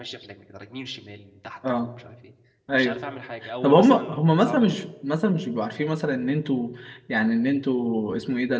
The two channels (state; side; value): identical; both; correlation 1.00